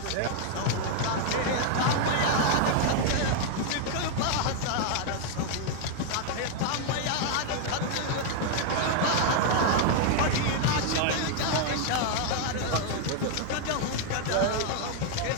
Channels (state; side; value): different; both; correlation 0.00